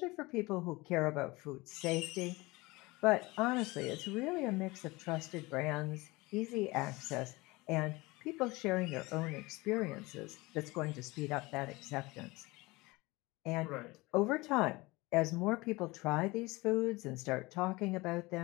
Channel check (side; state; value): right; quieter; 22.6 dB